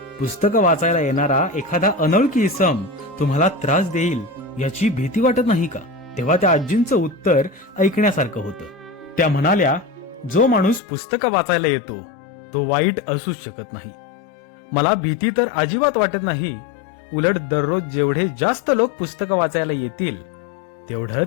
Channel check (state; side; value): drops out; right; at 10.8 s